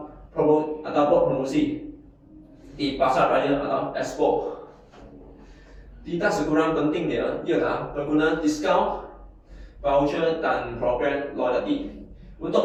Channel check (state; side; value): identical; both; correlation 1.00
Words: promosi di pasar raya atau expo. Tidak sekurang pentingnya ialah penggunaan diskaun, voucher dan program loyalty